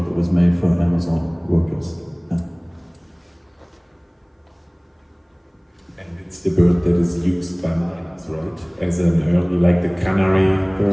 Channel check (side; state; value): both; identical; correlation 1.00